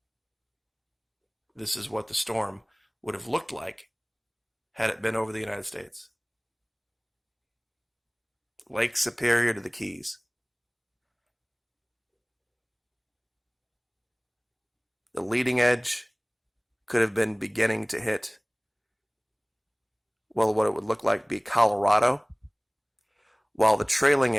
This is what the storm would have looked like had it been over the United States. Lake Superior to the Keys. The leading edge could have been beginning to hit, well, what it would look like be Colorado, while the trailing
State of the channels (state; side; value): identical; both; correlation 1.00